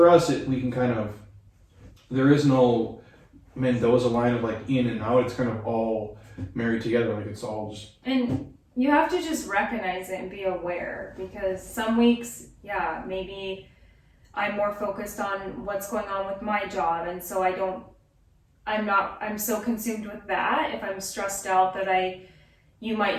us. We can kind of, there is no Mendoza line of like in and out. It's kind of all married together. Like it's all just. And you have to just recognize it and be aware, because some weeks, maybe I'm more focused on what's going on with my job. And so I'm so consumed with that. If I'm stressed out that you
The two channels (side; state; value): both; identical; correlation 1.00